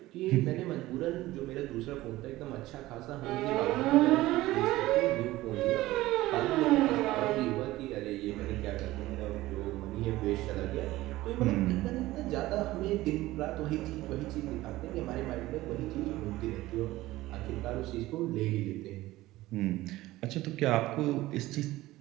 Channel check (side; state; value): left; quieter; 17.3 dB